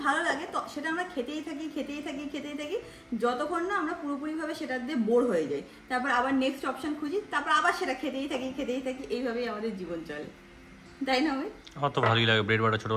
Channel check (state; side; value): identical; both; correlation 1.00